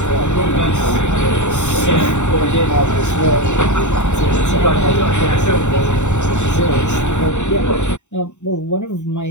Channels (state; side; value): late; right; 0.84 ms